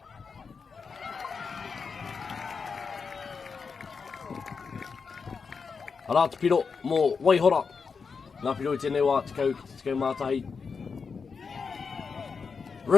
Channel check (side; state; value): right; quieter; 5.4 dB